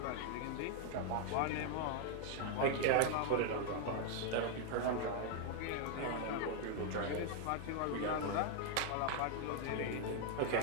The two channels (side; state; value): both; different; correlation 0.00